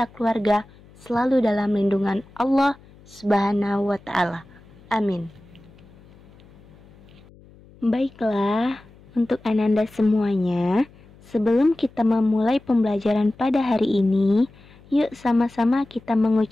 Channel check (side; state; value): left; noise; hum, 25 dB below the sound